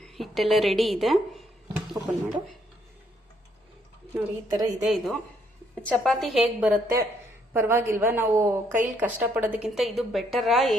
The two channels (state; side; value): normal; both; correlation 0.70